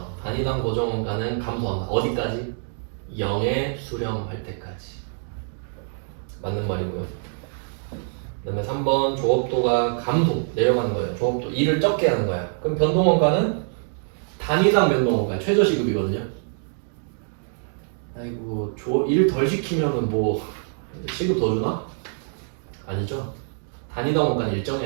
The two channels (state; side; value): silent; left; 62 dB below the other